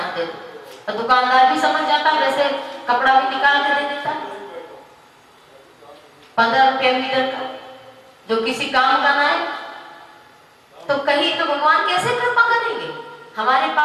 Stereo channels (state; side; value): identical; both; correlation 1.00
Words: दे दो, और दुकानदार भी समझ जाता है, वैसे कपड़ा भी निकाल कर दे देता है 15 रुपया मीटर का, जो किसी काम का ना है। तो कहीं तो भगवान कैसे कृपा करेंगे? हमारे